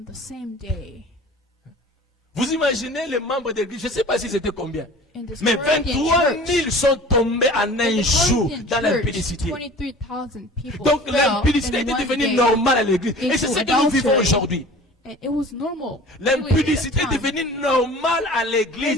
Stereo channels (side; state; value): both; normal; correlation 0.43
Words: the same day. Vous imaginez les membres de l'église, je ne sais pas si c'était combien, In this mais Corinthian 23 000 church, sont tombés en un in the jour Corinthian dans church, l'impudicité. 23,000 people Donc fell l'impudicité in était one devenue day normale à l'église. Et c'est into ce que nous vivons adultery. aujourd'hui. And it was normal. L'impudicité est really at that time. devenue normale à